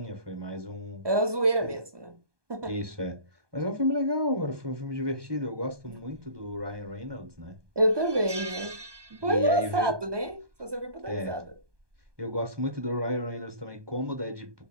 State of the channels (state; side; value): late; left; 1.2 ms